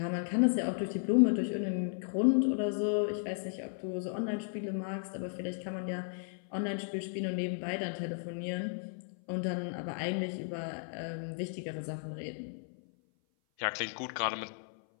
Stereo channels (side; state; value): right; silent; 55 dB below the other